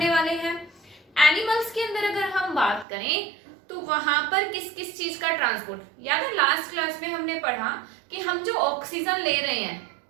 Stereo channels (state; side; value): drops out; left; at 2.9 s